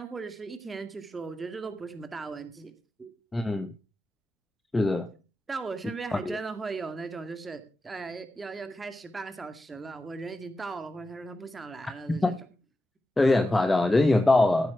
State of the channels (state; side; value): normal; both; correlation 0.92